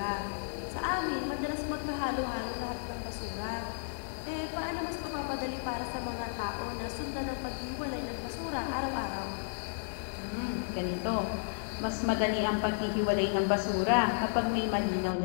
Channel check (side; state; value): right; silent; 56 dB below the other